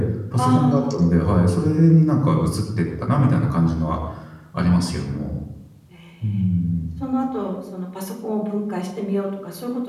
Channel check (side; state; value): both; identical; correlation 1.00